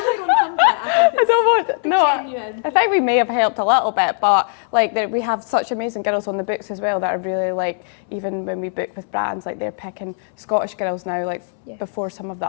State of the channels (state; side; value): silent; right; 66 dB below the other